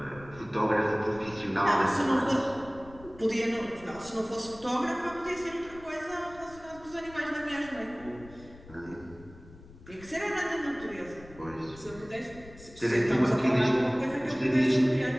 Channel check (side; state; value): left; noise; rumble, 20 dB below the sound